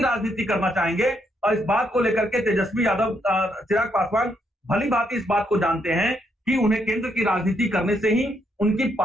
राजनीति करना चाहेंगे। और इस बात को लेकर के तेजस्वी यादव चिराग पासवान भली भांति इस बात को जानते हैं कि उन्हें केंद्र की राजनीति करने से ही उनकी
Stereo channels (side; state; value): both; normal; correlation 0.76